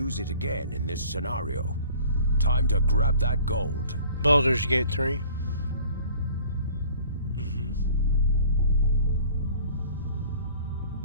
it again in this scenario. Time to grab that gold. Baldur's Gate 3.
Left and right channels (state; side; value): inverted; both; correlation -0.50